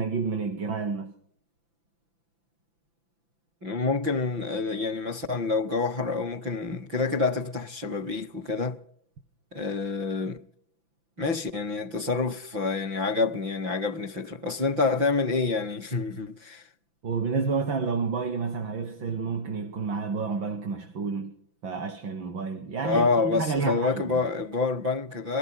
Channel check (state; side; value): late; left; 5.9 ms